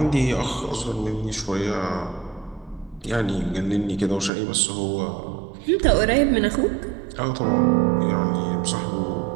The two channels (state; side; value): drops out; left; at 4.3 s